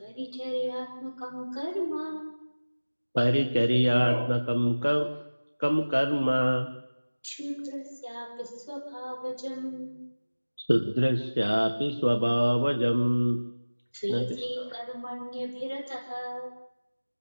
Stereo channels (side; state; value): both; inverted; correlation -1.00